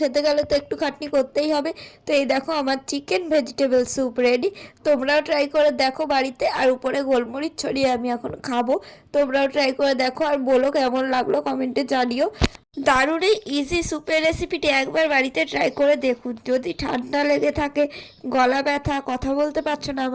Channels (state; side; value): identical; both; correlation 1.00